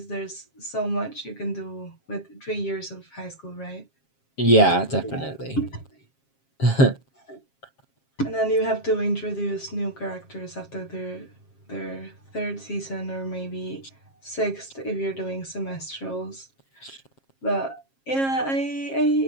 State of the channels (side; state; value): right; late; 7.4 ms